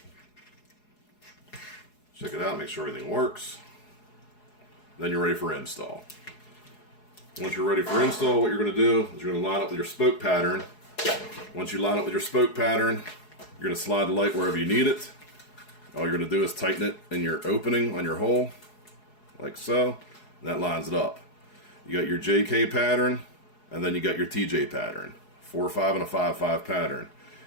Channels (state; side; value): late; right; 4.7 ms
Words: Check it out, make sure everything works. Then you're ready for install. Once you're ready for install, what you're going to do is you're going to line up with your spoke pattern. Once you line up with your spoke pattern, you're going to slide the light wherever you need it. All you're going to do is tighten it in your opening on your hole, like so, and that lines it up. You got your JK pattern, and then you got your TJ pattern. 4-5 and a 5-5 pattern.